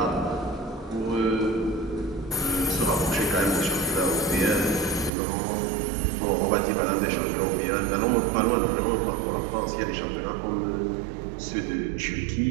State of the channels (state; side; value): drops out; left; at 5.1 s